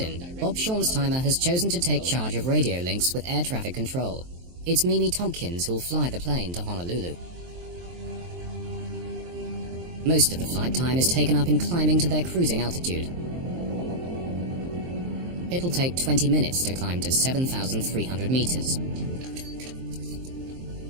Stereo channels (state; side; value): late; left; 23 ms